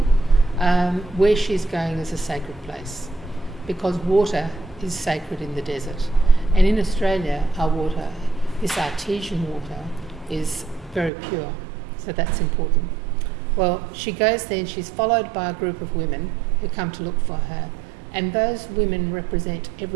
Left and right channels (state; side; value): drops out; left; at 11.1 s